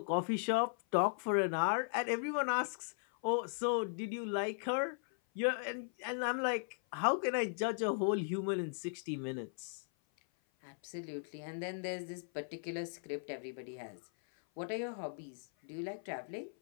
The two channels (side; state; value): right; silent; 53 dB below the other